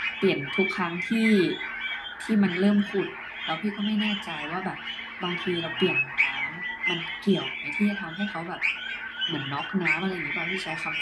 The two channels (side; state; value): both; identical; correlation 1.00